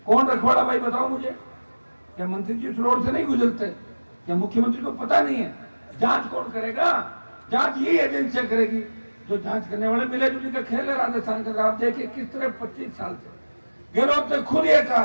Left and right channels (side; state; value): both; inverted; correlation -1.00